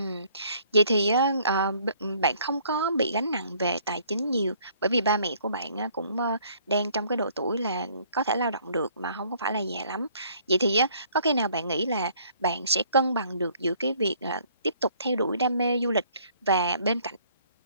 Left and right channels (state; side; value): inverted; both; correlation -0.60